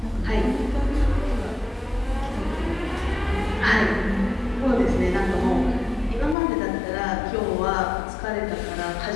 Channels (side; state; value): right; drops out; at 6.4 s